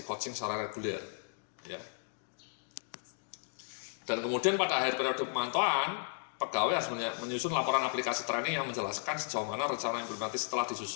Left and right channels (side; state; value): right; silent; 55 dB below the other